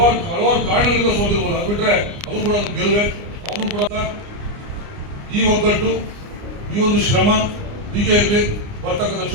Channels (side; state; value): left; late; 29 ms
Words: ಹಲವಾರು ಕಾರಣಗಳಿಂದ ಸೋತಿರ್ಬೋದು, ಅದು ಬಿಟ್ರೆ ಅದು ಕೂಡ ಗೆಲುವೆ. ಅವನು ಕೂಡ ಈ ಒಗ್ಗಟ್ಟು, ಈ ಒಂದು ಶ್ರಮ ಹೀಗೆ ಇರಲಿ. ಬರ್ತಕ್ಕಂಥ